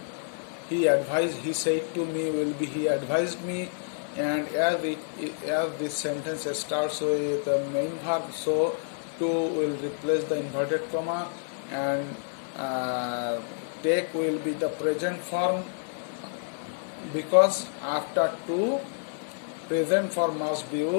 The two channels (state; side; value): silent; right; digital silence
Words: he said to me will be he advised me. And as this sentence starts with the main verb, so to will replace the inverted comma, and take will be the present form, because after to, present form must be